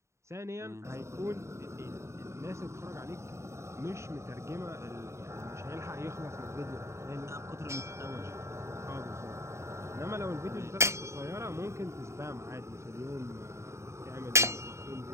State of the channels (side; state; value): left; late; 0.14 ms